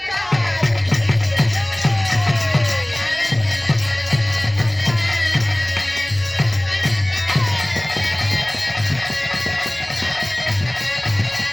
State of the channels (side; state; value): left; noise; hum, 26 dB below the sound